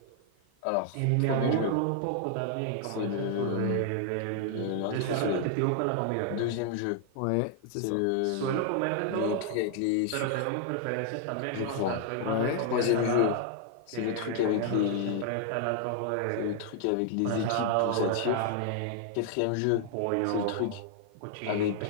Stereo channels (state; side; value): different; both; correlation 0.00